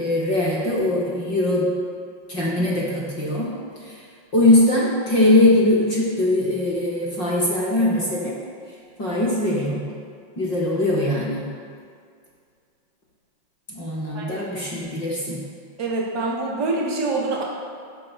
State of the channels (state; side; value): late; right; 5.5 ms